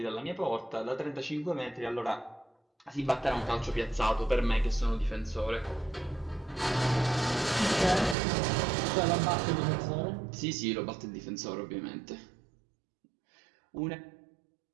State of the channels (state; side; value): drops out; left; at 8.2 s